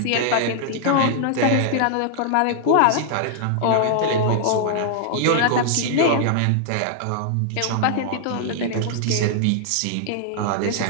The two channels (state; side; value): different; both; correlation -0.01